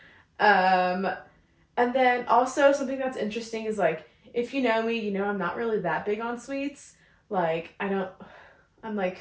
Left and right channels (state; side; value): identical; both; correlation 1.00